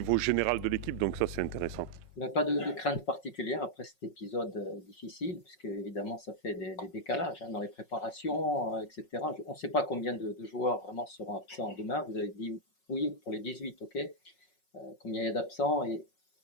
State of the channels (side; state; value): right; late; 5.4 ms